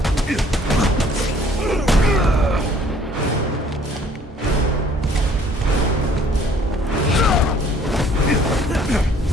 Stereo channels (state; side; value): normal; both; correlation 0.58